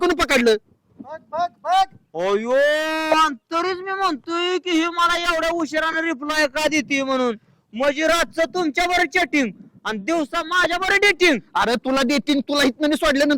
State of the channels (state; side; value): identical; both; correlation 1.00